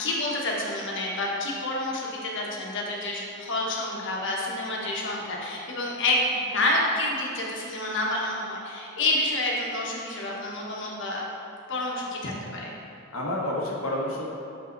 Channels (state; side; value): normal; both; correlation -0.01